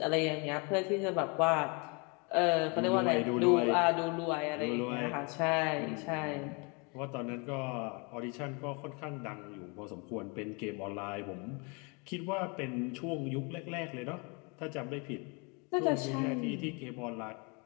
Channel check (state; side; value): quieter; right; 32.0 dB